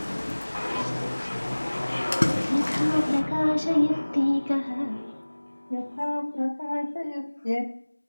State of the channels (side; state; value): both; inverted; correlation -1.00